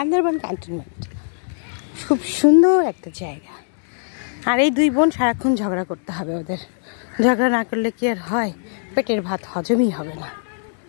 ক্যান্টনমেন্ট। খুব সুন্দর একটা জায়গা। আর এই দুই বোন সারাক্ষণ ঝগড়া করতে হবে ওদের। ঝগড়া না করলে কি আর হয়? পেটের ভাত হজমই হবে না।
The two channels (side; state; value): right; silent; digital silence